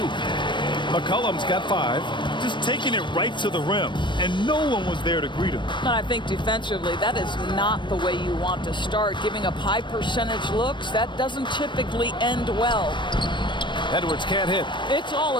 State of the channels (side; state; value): right; late; 0.22 ms